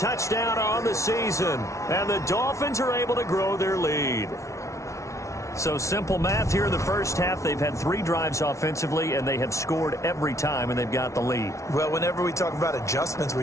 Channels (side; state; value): right; late; 0.14 ms